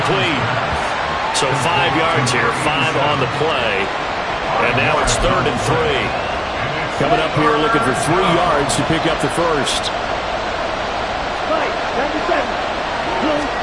So 5 yards here, 5 on the play. And now it's 3rd and 3. Coming up here looking for 3 yards to pick up the first.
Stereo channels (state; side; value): identical; both; correlation 1.00